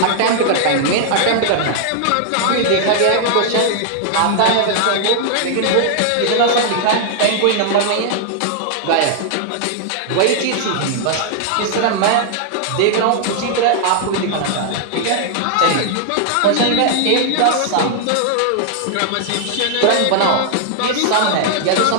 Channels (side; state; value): both; different; correlation 0.00